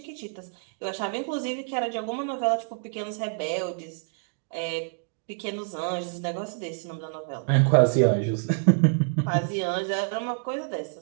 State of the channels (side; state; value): left; silent; digital silence